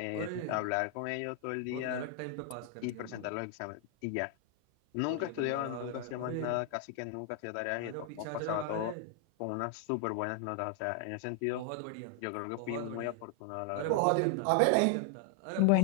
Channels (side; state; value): both; different; correlation 0.00